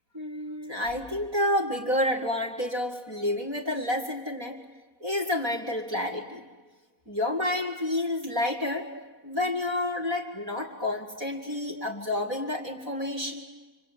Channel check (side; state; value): left; late; 4.1 ms